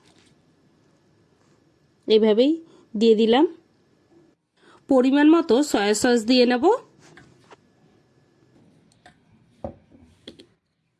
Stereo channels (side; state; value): both; identical; correlation 1.00